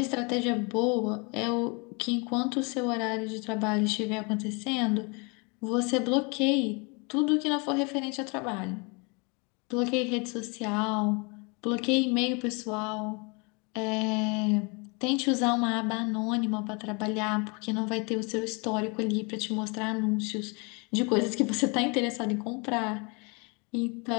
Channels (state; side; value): quieter; right; 31.4 dB